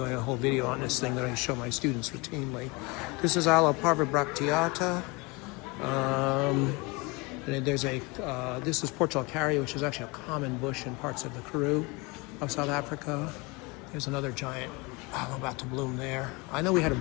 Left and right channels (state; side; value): quieter; right; 26.6 dB